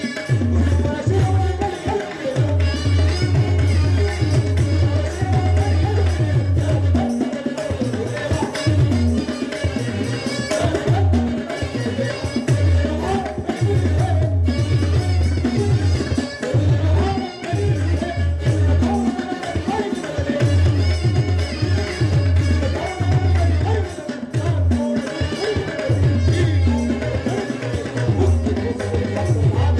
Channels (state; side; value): identical; both; correlation 1.00